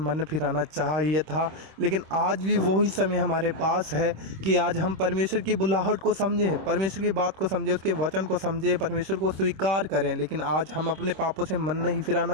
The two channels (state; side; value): late; left; 26 ms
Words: फिराना चाहिए था। लेकिन आज भी वही समय हमारे पास है कि आज हम परमेश्वर की बुलाहट को समझें, परमेश्वर की बात को समझें, उसके वचन को समझें, परमेश्वर को स्वीकार करें। लेकिन आज हम अपने पापों से मन नहीं